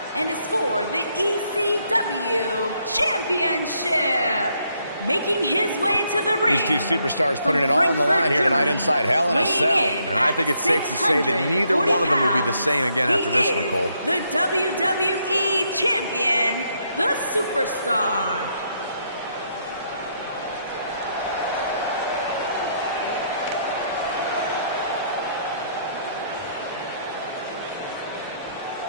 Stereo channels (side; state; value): both; inverted; correlation -0.74